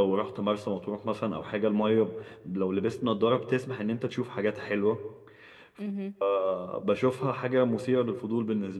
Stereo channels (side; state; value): both; identical; correlation 1.00